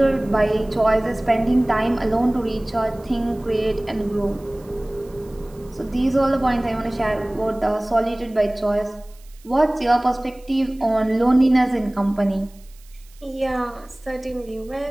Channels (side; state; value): right; noise; hiss, 28 dB below the sound